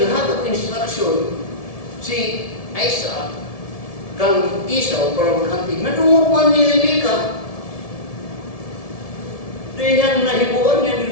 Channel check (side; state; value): right; late; 1.7 ms